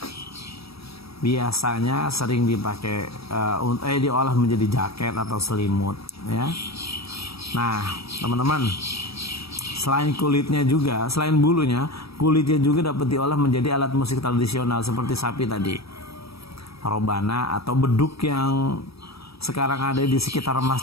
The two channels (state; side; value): late; right; 0.77 ms